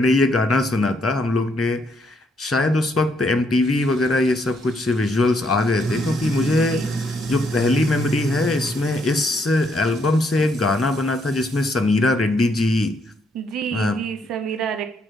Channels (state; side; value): normal; both; correlation 0.73